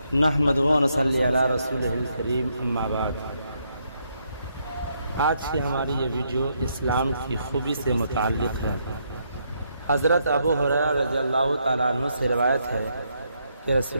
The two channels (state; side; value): inverted; both; correlation -0.76